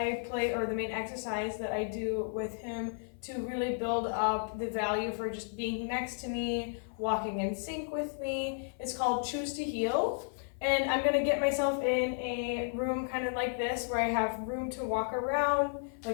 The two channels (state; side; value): silent; right; 56 dB below the other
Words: play, or the main exercise that I do with him to really build up the value for just being next to me, walking in sync with me, is called Choose to Heal. And I'm gonna get myself in a room kind of like this where I have room to walk around.